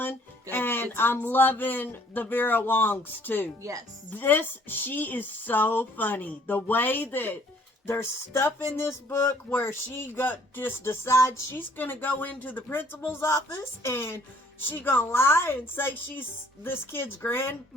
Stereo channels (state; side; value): normal; both; correlation 0.60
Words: Good. And Good I'm times. loving the Vera Wongs too. Yes. She is so funny. The way that there's stuff in this book where she just decides she's going to go into the principal's office and she going to lie and say she's this kid's